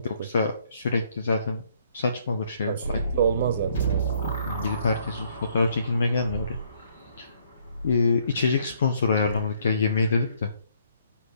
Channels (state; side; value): inverted; both; correlation -0.67